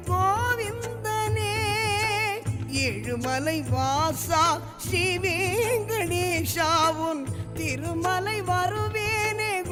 கோவிந்தனே ஏழுமலை வாசா ஸ்ரீ வெங்கடேஷாவுன் திருமலை வருவேனே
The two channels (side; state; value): both; identical; correlation 1.00